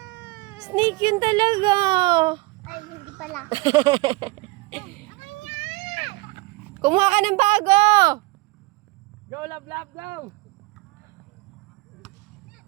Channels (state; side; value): quieter; left; 22.9 dB